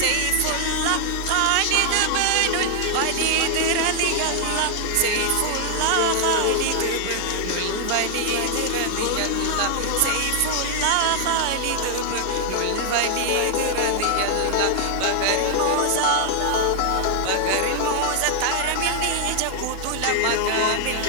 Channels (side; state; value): both; different; correlation 0.00